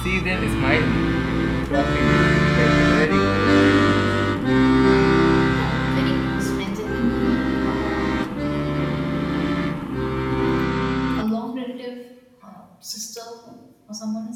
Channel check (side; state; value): both; identical; correlation 1.00